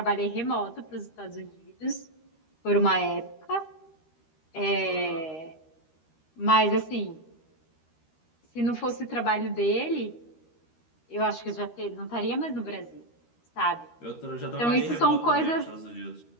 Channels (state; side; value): late; right; 13 ms